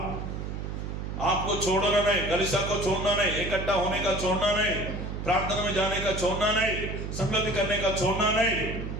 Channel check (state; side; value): noise; right; hum, 5 dB below the sound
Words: आपको छोड़ना नहीं, कलीसिया को छोड़ना नहीं, इकट्ठा होने का छोड़ना नहीं, प्रार्थना में जाने का छोड़ना नहीं, संगति करने का छोड़ना नहीं।